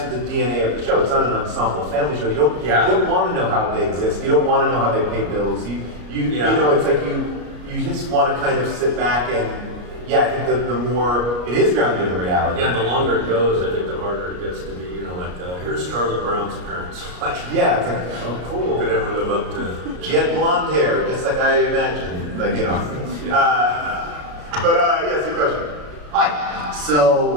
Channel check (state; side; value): late; left; 33 ms